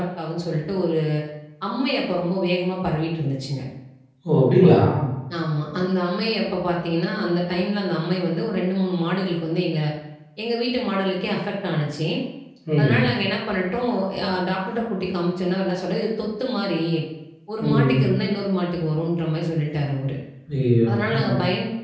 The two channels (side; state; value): both; identical; correlation 1.00